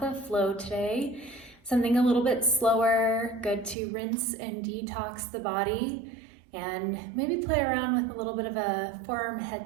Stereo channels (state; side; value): drops out; left; at 3.8 s